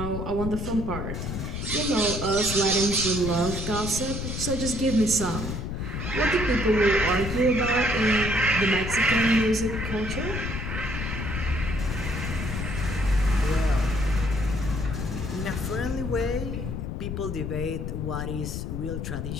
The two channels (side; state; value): left; noise; rumble, 4 dB below the sound